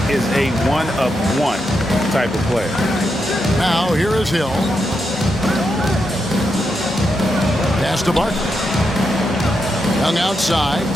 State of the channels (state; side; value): normal; both; correlation 0.84